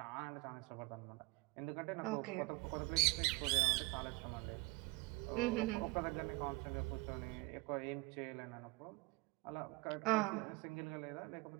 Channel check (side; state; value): left; quieter; 24.9 dB